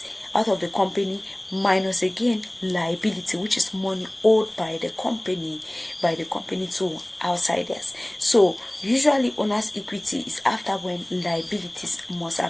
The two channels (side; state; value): right; noise; rumble, 29 dB below the sound